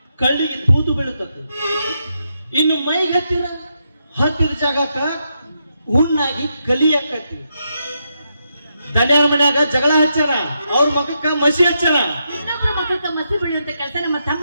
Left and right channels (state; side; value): inverted; both; correlation -0.82